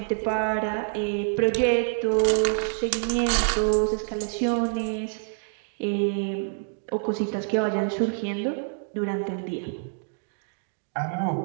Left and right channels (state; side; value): silent; left; digital silence